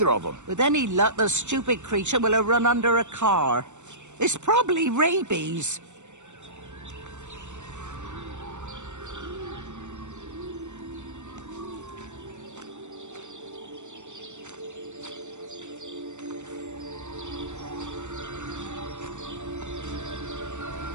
of them. With any luck, the stupid creature will have run under a car. It's probably rabies.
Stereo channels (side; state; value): left; late; 0.84 ms